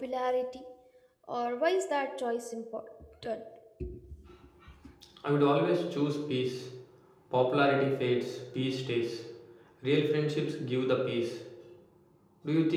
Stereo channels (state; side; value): identical; both; correlation 1.00